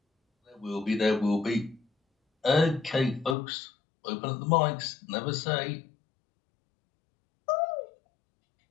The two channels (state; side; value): drops out; right; at 3.4 s